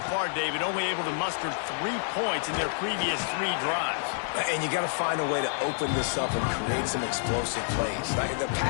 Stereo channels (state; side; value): silent; right; digital silence